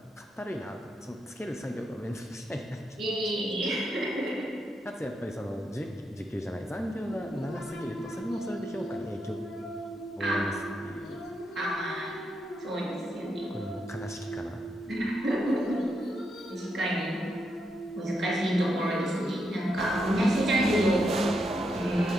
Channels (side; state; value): both; normal; correlation 0.82